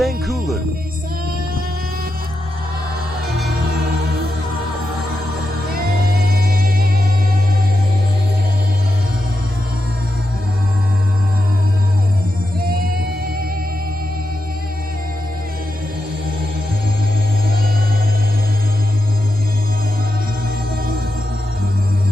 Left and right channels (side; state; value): both; normal; correlation 0.88